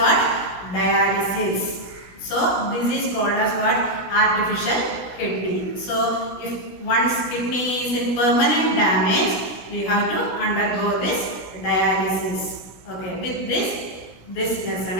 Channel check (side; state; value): right; late; 16 ms